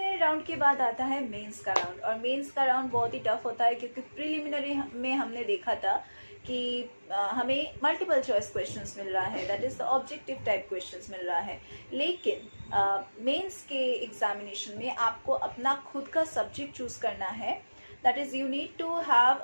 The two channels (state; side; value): inverted; both; correlation -1.00